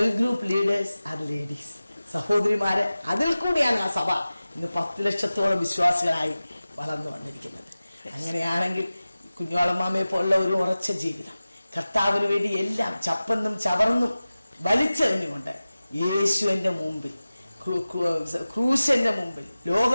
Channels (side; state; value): both; inverted; correlation -0.96